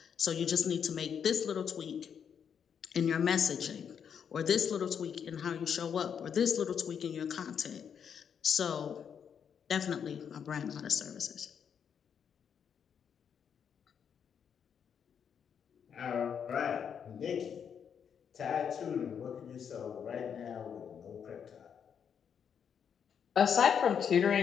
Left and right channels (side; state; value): right; quieter; 7.6 dB